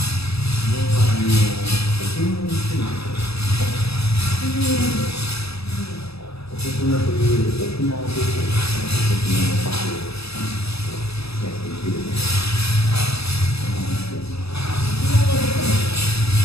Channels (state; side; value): late; right; 0.78 ms